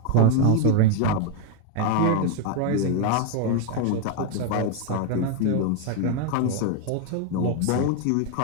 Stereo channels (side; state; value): both; different; correlation 0.01